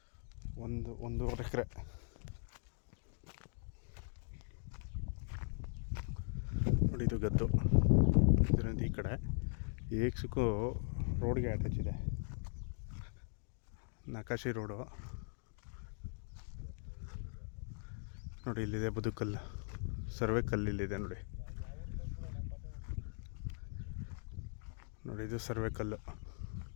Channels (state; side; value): silent; right; 51 dB below the other